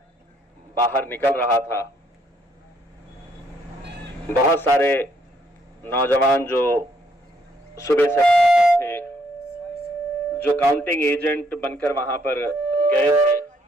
बाहर निकल रहा था, बहुत सारे नौजवान जो सुबह से थे, जो काउंटिंग एजेंट बनकर वहां पर गए थे,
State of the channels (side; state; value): both; normal; correlation 0.70